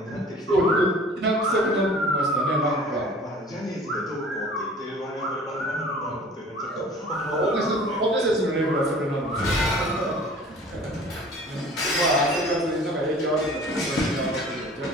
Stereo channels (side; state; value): both; normal; correlation 0.47